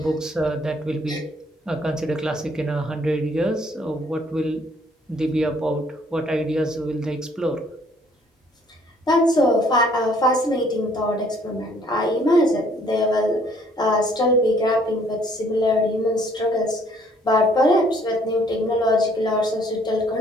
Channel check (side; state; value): both; normal; correlation 0.62